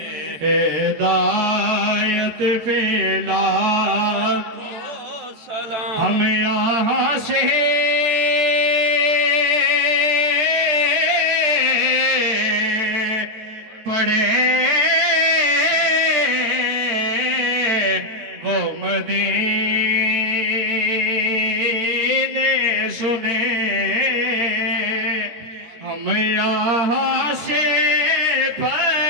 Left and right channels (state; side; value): late; left; 14 ms